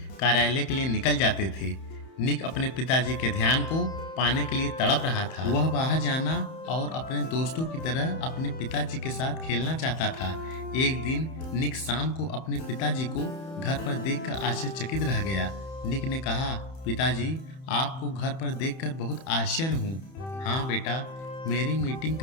कार्यालय के लिए निकल जाते थे। निक अपने पिताजी के ध्यान को पाने के लिए तड़प रहा था। वह बाहर जाना और अपने दोस्तों की तरह अपने पिताजी के साथ खेलना चाहता था। एक दिन निक शाम को अपने पिताजी को घर पर देखकर आश्चर्यचकित रह गया। निक ने कहा, पिताजी, आपको घर पर देखकर बहुत आश्चर्य हूँ। हाँ बेटा, मेरी मीटिंग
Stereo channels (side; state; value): right; late; 31 ms